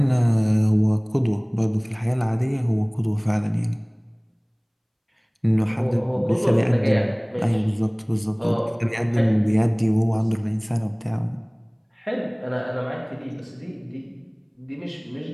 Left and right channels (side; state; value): both; identical; correlation 1.00